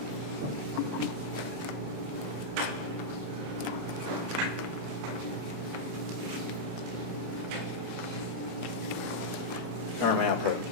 Or may I approach?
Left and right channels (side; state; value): left; late; 28 ms